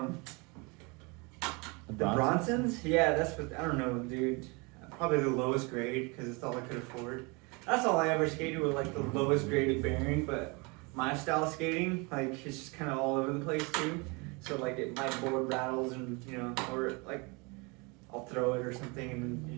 Bronsons. Yeah, that's what I don't know, dude. Probably the lowest grade because it's all I could afford. That's all I ever skated with, like the lowest graded bearing. But my style of skating, like it's just kind of all over the place too. So like my board rattles and or like I'll throw it or something and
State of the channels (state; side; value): quieter; left; 28.9 dB